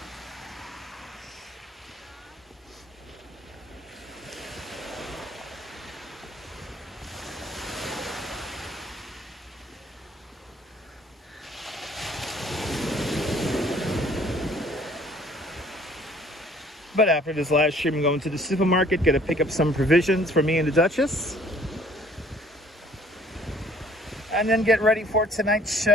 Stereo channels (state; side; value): normal; both; correlation 0.57